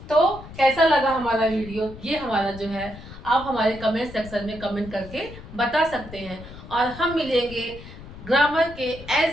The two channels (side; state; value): left; noise; rumble, 15 dB below the sound